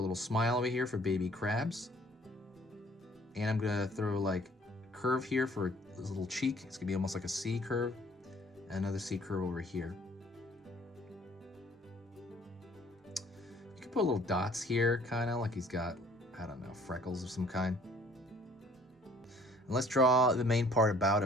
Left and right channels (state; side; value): normal; both; correlation 0.57